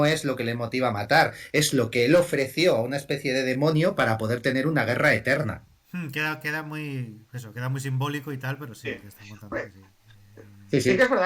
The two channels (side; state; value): both; identical; correlation 1.00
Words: es lo que le motiva a matar, es lo que él ofreció a una especie de demonio para poder tener una guerra eterna. Queda muy. Eso, queda muy simbólico y tal, pero sí, Sí. que están contando que Hombre, sí. Sí, sí que sí. es